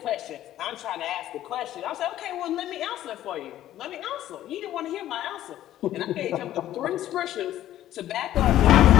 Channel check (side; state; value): right; quieter; 13.0 dB